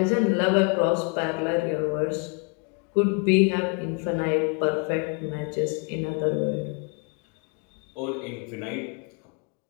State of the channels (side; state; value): right; quieter; 33.9 dB